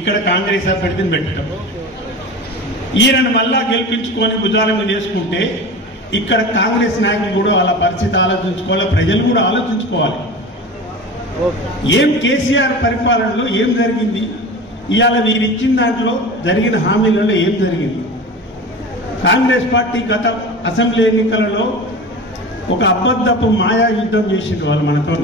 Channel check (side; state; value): both; normal; correlation 0.32